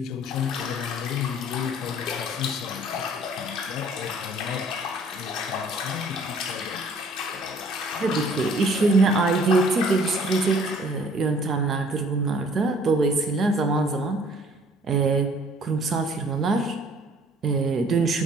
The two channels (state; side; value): normal; both; correlation 0.56